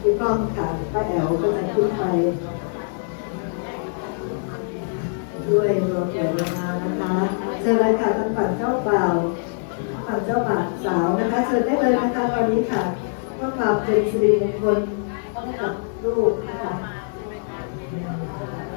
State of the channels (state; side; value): silent; right; digital silence